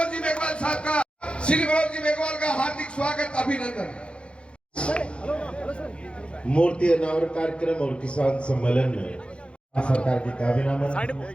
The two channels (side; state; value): right; late; 0.058 ms